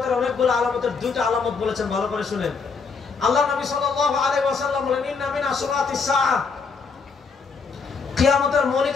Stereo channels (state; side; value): quieter; right; 5.0 dB